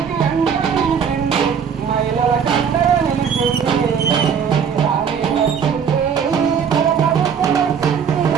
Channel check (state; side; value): quieter; left; 7.1 dB